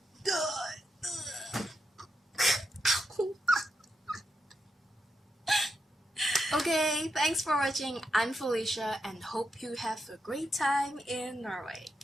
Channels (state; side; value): normal; both; correlation 0.84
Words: die. Okay, thanks for watching. I'm Felicia and hope you have a great time in Norway.